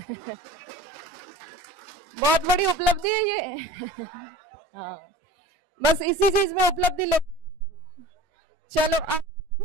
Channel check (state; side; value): normal; both; correlation 0.40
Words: बहुत बड़ी उपलब्धि है ये। हाँ, बस इसी चीज में उपलब्धि ले। चलो, अब